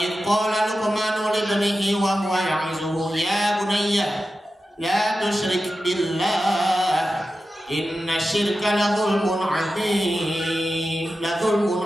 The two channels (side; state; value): both; normal; correlation 0.92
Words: qala Luqmanu li ibnihi wa huwa ya'izuhu ya bunayya la tusyrik billah inna syirka la dzulmun 'adzim.